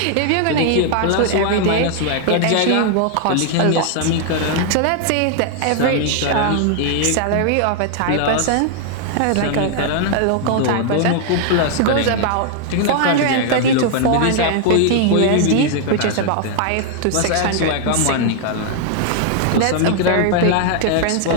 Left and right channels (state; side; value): different; both; correlation 0.00